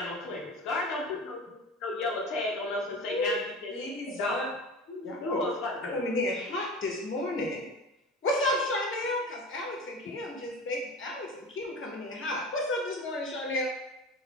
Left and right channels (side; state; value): both; normal; correlation 0.32